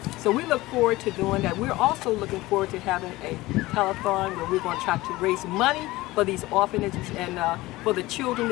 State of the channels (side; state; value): right; quieter; 19.1 dB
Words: So we look forward to doing that. We're also looking forward to having a telethon where we're going to try to raise money for these orphanages and for the children